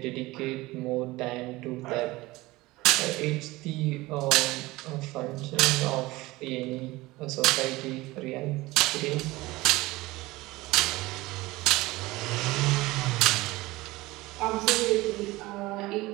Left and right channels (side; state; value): left; quieter; 20.0 dB